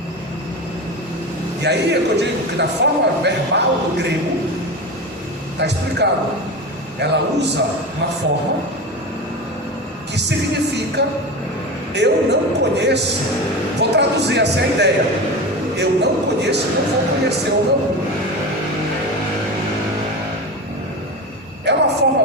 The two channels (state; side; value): normal; both; correlation 0.25